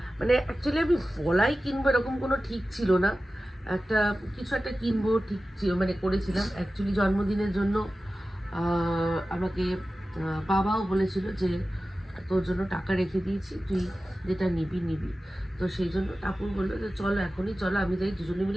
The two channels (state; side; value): normal; both; correlation 0.95